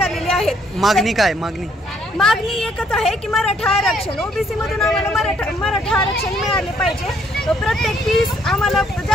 आहेत। मागणी काय? मागणी एकच आहे की मराठा आरक्षण, ओबीसी मधून आम्हाला मराठा आरक्षण मिळाले पाहिजे। प्रत्येक फीस आम्हाला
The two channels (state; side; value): normal; both; correlation 0.67